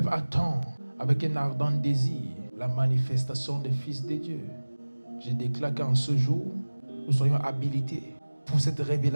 attend avec un ardent désir la manifestation des fils de Dieu. Je déclare qu'en ce jour, nous soyons habilités pour cette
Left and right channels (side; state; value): both; inverted; correlation -1.00